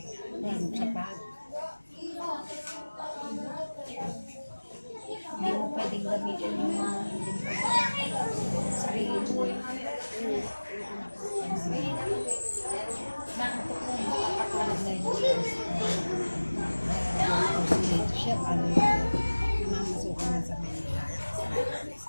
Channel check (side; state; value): both; inverted; correlation -1.00